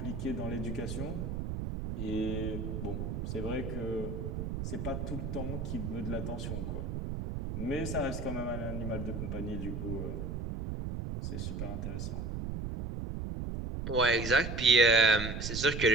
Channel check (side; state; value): right; noise; rumble, 4 dB below the sound